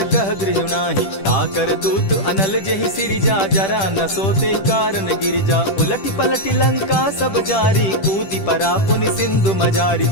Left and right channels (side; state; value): right; late; 10 ms